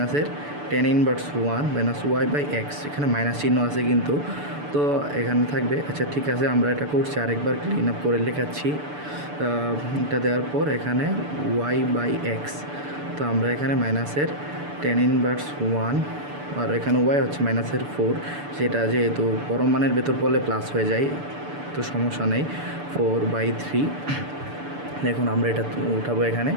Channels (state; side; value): late; left; 6.9 ms